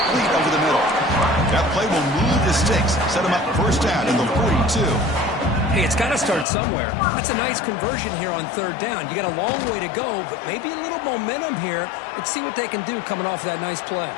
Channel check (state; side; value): drops out; right; at 6.5 s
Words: over the middle. That play will move the sticks. Set them up first down at the 42. Hey, it's got to start somewhere. That's a nice conversion here on third down. You got a long way to go, but maybe a little momentum here. Let's see what they can do coming off of that nice play.